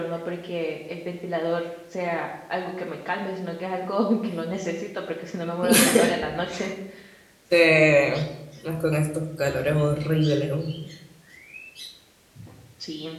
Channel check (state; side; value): identical; both; correlation 1.00